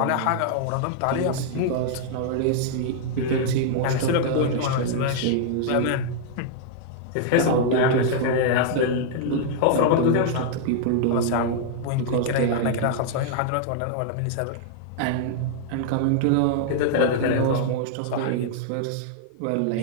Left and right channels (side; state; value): both; different; correlation -0.01